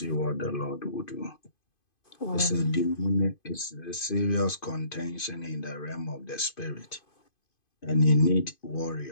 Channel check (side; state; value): right; late; 2.5 ms